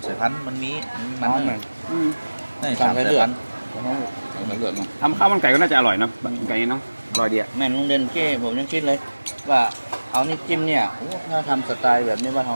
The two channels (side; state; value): both; inverted; correlation -1.00